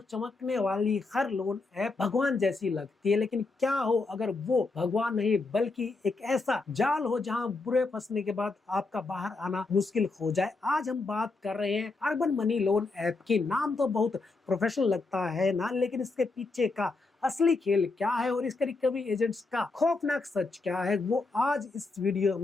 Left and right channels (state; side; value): quieter; right; 3.6 dB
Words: चमकने वाली हर लोन ऐप भगवान जैसी लगती है। लेकिन क्या हो अगर वो भगवान नहीं बल्कि एक ऐसा जाल हो जहां बुरे फंसने के बाद आपका बाहर आना मुश्किल हो जाए। आज हम बात कर रहे हैं अर्बन मनी लोन ऐप की। नाम तो बहुत प्रोफेशनल लगता है ना, लेकिन इसके पीछे का असली खेल क्या है और इसके रिकवरी एजेंट्स का खौफनाक सच क्या है, वो आज इस वीडियो